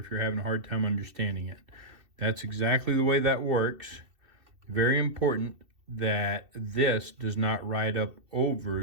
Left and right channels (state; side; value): late; left; 2.7 ms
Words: you're having a hard time understanding it. That's exactly the way that works. Very important that this does not ride up